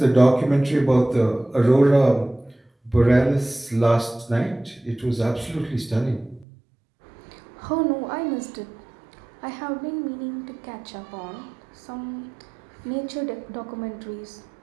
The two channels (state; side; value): drops out; left; at 6.5 s